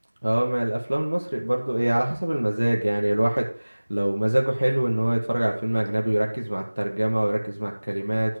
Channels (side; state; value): both; inverted; correlation -1.00